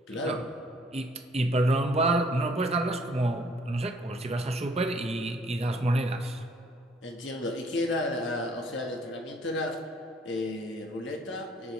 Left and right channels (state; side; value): normal; both; correlation 0.61